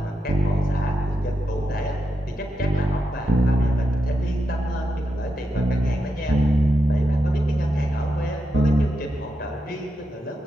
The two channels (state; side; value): normal; both; correlation 0.85